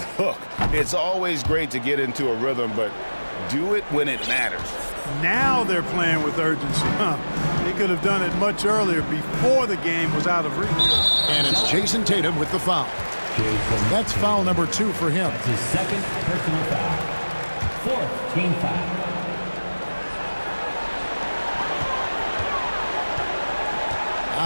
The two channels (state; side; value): inverted; both; correlation -1.00